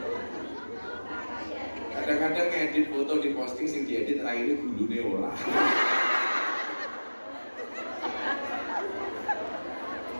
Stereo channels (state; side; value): inverted; both; correlation -1.00